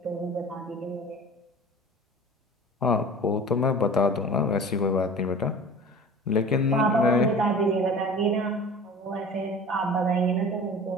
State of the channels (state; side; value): normal; both; correlation 0.40